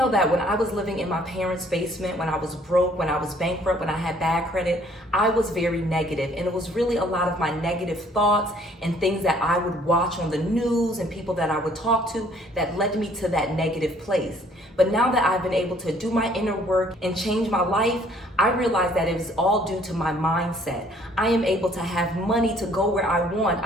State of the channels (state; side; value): normal; both; correlation 0.60